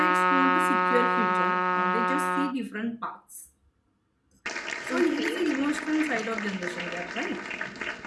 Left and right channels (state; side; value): identical; both; correlation 1.00